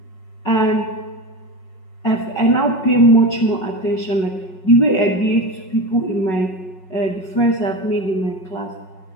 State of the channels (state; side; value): late; right; 5.4 ms